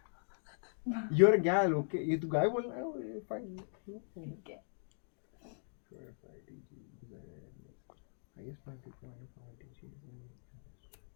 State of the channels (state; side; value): silent; right; digital silence